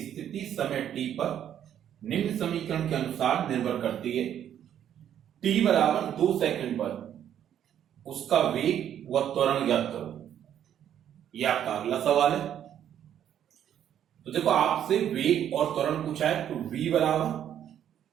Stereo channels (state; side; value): quieter; left; 10.1 dB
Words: स्थिति समय t पर निम्न समीकरण के अनुसार निर्भर करती है। t बराबर 2 सेकंड पर उसका वेग व त्वरण ज्ञात करो। यह आपका अगला सवाल है। तो देखो आपसे वेग और त्वरण पूछा है, तो v बराबर